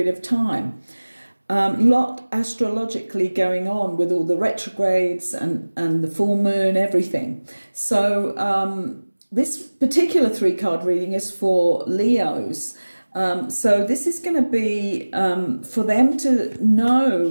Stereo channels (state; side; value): inverted; both; correlation -1.00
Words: of time. Lot astrologically going on with all the retrogrades and the full moon, everything. So this particular 3-card reading is for Leos. So this is going to be for them to